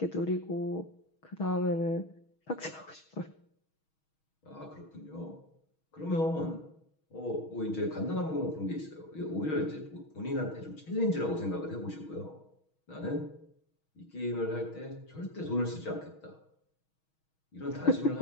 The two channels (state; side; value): late; right; 6.3 ms